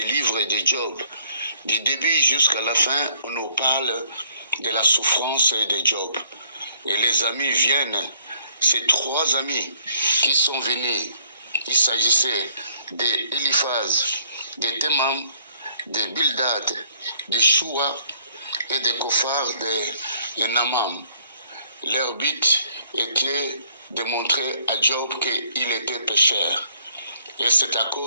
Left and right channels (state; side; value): inverted; both; correlation -0.63